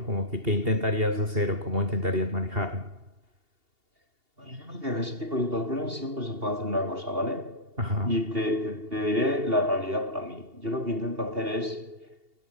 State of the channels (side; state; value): left; late; 2.8 ms